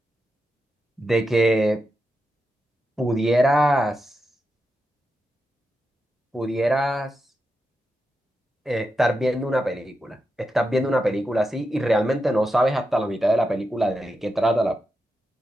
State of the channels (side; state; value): both; normal; correlation 0.87